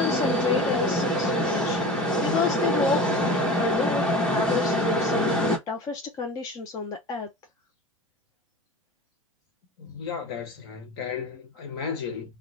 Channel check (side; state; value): both; normal; correlation 0.33